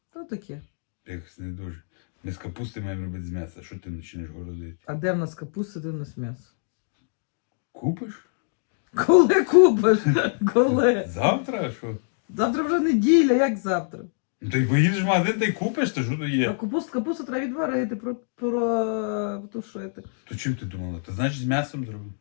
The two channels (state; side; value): silent; right; digital silence